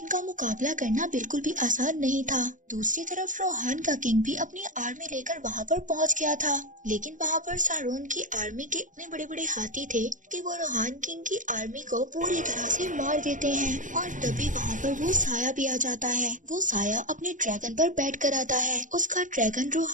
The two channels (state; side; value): late; left; 0.37 ms